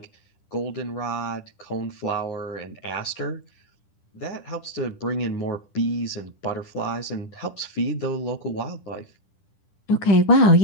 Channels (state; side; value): late; right; 10 ms